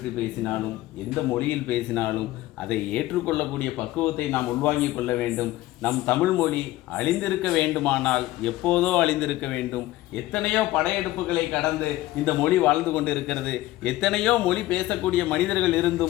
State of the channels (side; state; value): right; quieter; 16.7 dB